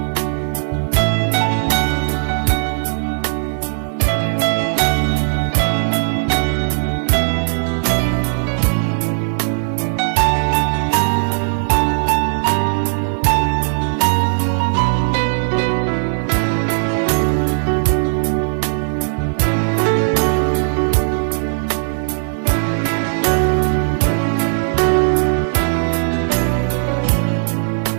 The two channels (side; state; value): left; silent; digital silence